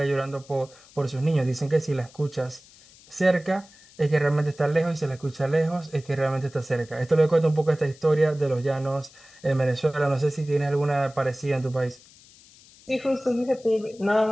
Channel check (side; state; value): left; noise; hiss, 25 dB below the sound